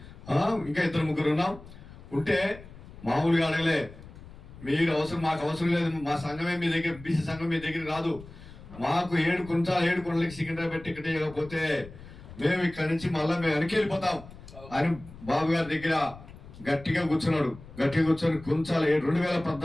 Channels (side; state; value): left; noise; rumble, 17 dB below the sound